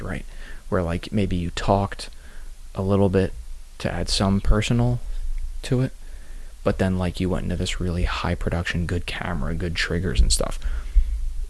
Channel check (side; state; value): both; identical; correlation 1.00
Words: right? Where, like, maybe you talked a little bit to add some personal to it, but then, like, you went into this really high production, good camera, good triggers and stuff.